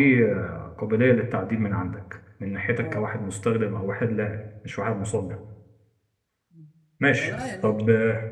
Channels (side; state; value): both; identical; correlation 1.00